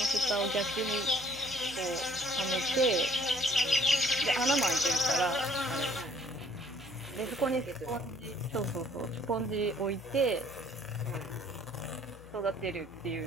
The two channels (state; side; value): noise; left; hum, 19 dB below the sound